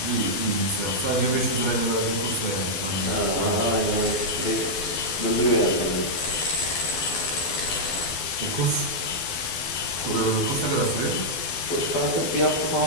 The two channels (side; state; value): right; late; 12 ms